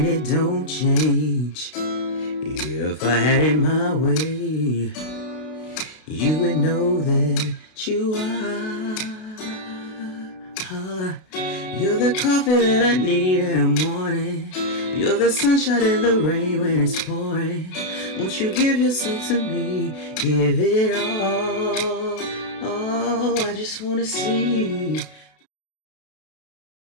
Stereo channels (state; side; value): late; right; 32 ms